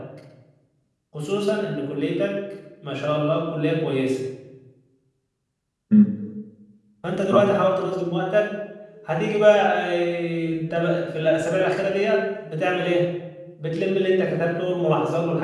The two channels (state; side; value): identical; both; correlation 1.00